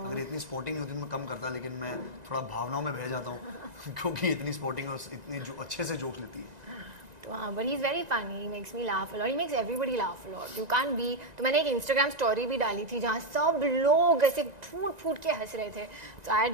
इतनी स्पोर्टिंग होती तो मैं कम करता, लेकिन मैं थोड़ा भावनाओं में बह जाता हूँ क्योंकि इतनी स्पोर्टिंग और इतनी जो अच्छे से जोक लेती है। तो हाँ, but he is very funny, he makes me laugh a lot, he makes everybody laugh a lot. You can't be. तो मैंने एक इंस्टाग्राम स्टोरी भी डाली थी जहाँ सब लोग ऐसे फूट फूट के हंस रहे थे। तो I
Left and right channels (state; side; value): late; left; 1.9 ms